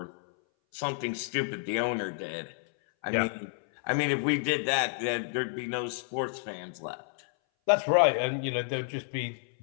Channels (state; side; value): silent; right; 58 dB below the other